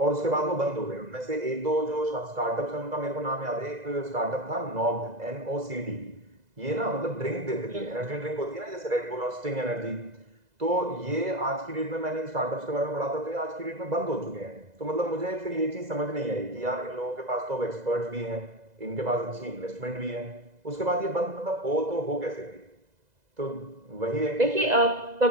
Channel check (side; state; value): left; late; 2.0 ms